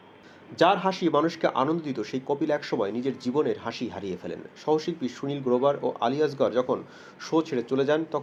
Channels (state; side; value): identical; both; correlation 1.00